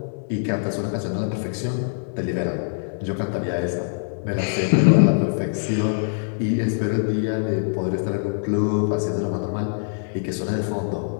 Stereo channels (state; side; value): silent; right; digital silence